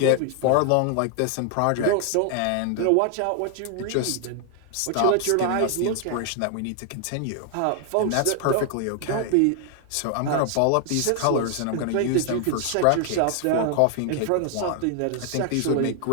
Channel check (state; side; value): different; both; correlation 0.00